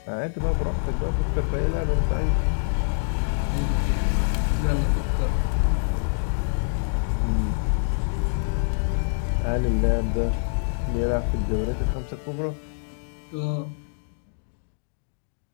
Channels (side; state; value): right; silent; digital silence